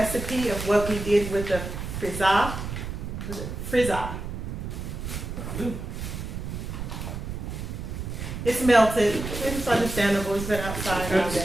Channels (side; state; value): right; noise; rumble, 6 dB below the sound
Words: of what we did with the frizza. It's melted. It's understandable. It's been outside all day.